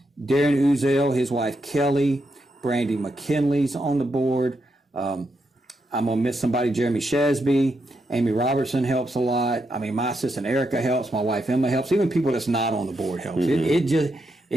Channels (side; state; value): both; normal; correlation 0.82